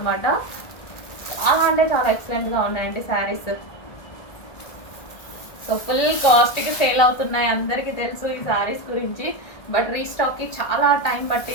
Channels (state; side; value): late; right; 1.5 ms